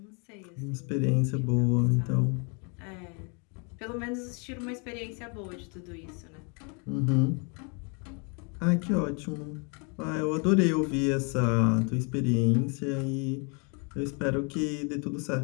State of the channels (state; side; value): quieter; right; 35.1 dB